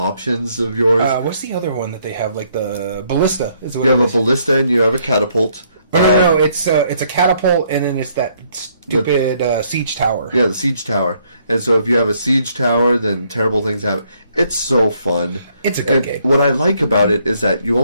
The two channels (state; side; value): inverted; both; correlation -0.69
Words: of yours. What's the other one that they have? Like the ballista. You have a ballista and you have a catapult. No. It's a catapult, and then it's that stupid siege tower. Yeah, the siege tower. And so if you have a siege tower, then terrible things happen. It's so fun. It's a good game. What I like about it is that you